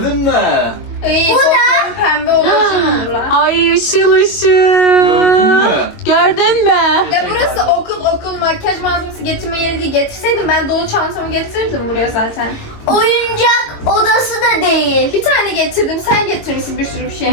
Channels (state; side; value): late; right; 22 ms